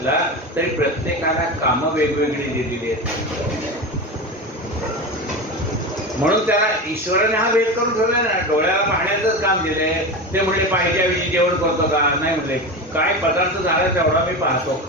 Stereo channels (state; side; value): normal; both; correlation 0.24